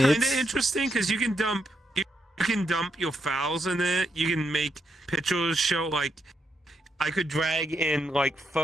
kind of it's- interesting because you can dump You can dump your files in it. You can make pictures show, like, I could drag in, like,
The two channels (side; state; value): both; normal; correlation 0.80